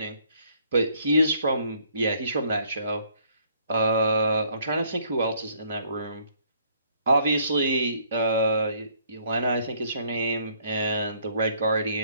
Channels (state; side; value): inverted; both; correlation -0.64